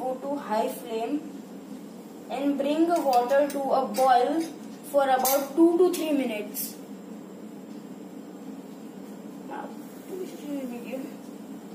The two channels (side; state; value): both; identical; correlation 1.00